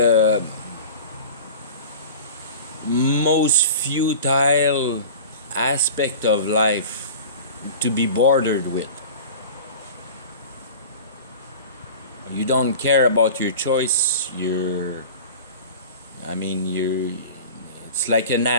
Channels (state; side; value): inverted; both; correlation -0.37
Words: most futile aspect of life to be bordered with. You don't care about your choice. It's like an